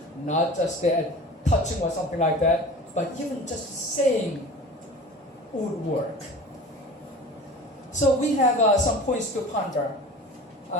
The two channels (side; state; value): both; normal; correlation 0.38